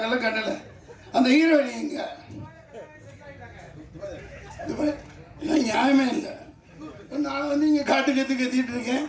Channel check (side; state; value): both; identical; correlation 1.00